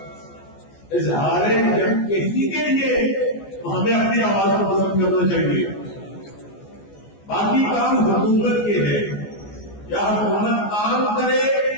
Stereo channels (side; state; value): right; late; 14 ms